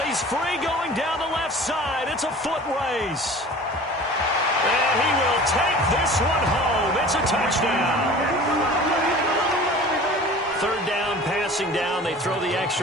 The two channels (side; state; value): both; normal; correlation 0.42